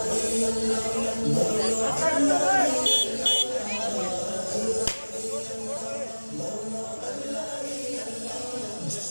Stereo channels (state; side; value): inverted; both; correlation -1.00